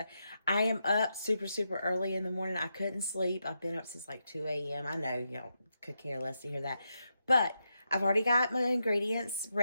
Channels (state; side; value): inverted; both; correlation -0.85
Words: I am up super early in the morning. I couldn't sleep. I've been up since like 2 a.m. I know y'all could care less to hear that. But I've already got my ingredients